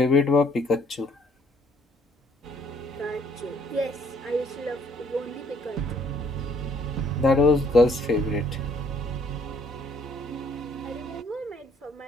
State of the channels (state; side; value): normal; both; correlation 0.64